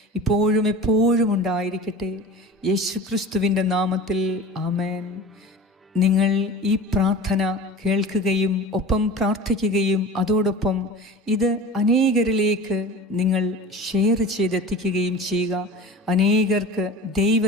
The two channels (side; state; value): both; normal; correlation 0.36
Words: ഇപ്പോഴും എപ്പോഴും ഉണ്ടായിരിക്കട്ടെ. യേശുക്രിസ്തുവിൻ്റെ നാമത്തിൽ ആമേൻ. നിങ്ങൾ ഈ പ്രാർത്ഥന കേൾക്കുകയും ഒപ്പം പ്രാർത്ഥിക്കുകയും അതോടൊപ്പം ഇത് അനേകരിലേക്ക് നിങ്ങൾ ഷെയർ ചെയ്തെത്തിക്കുകയും ചെയ്യുക. അനേകർക്ക്